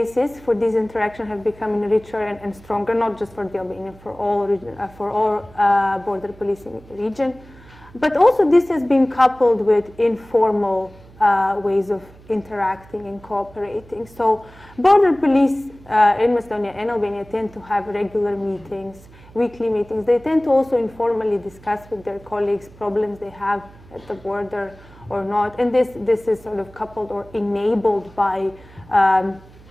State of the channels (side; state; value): right; noise; hum, 23 dB below the sound